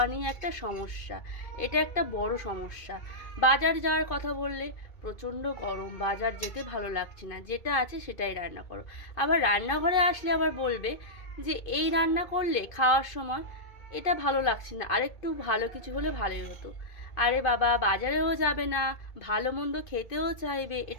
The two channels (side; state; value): right; late; 2.5 ms